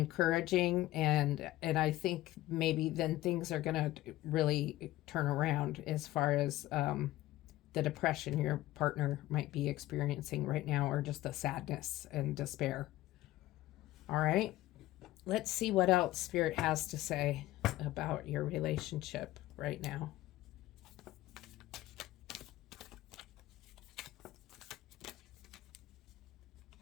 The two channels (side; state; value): right; quieter; 16.3 dB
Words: and I think maybe then things are going to really turn around as far as the depression your partner might be experiencing right now, or just the sadness and despair. All right, let's see what else Spirit has to say about your relationship right now.